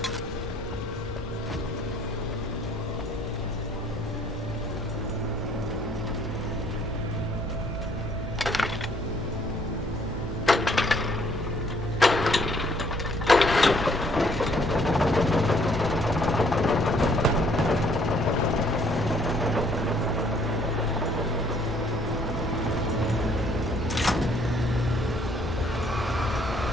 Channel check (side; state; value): both; normal; correlation 0.63